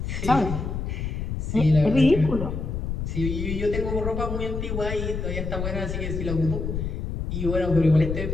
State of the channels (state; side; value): noise; left; rumble, 3 dB below the sound